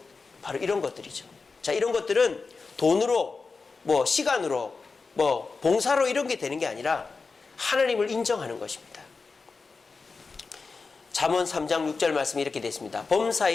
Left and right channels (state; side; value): quieter; right; 4.4 dB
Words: 바로 이런 것들이죠. 자, 이런 것들은 돈으로 뭐 시간으로 뭐 봉사로 이런 게 되는 게 아니라 하나님을 인정하는 것입니다. 잠언 3장 6절 말씀이 이렇게 되어 있습니다.